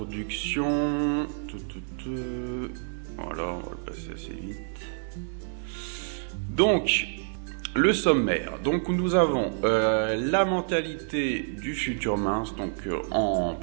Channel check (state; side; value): silent; left; digital silence